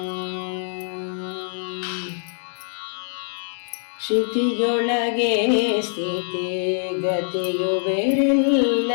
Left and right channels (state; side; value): silent; right; 59 dB below the other